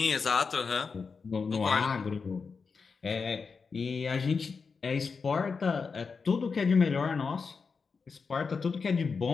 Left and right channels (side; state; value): right; quieter; 5.1 dB